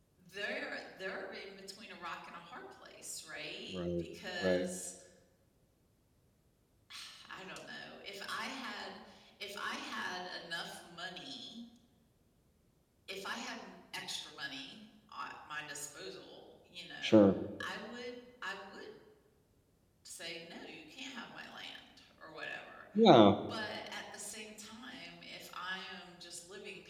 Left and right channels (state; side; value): identical; both; correlation 1.00